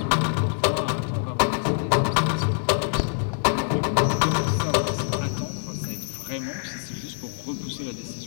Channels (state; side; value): silent; right; 60 dB below the other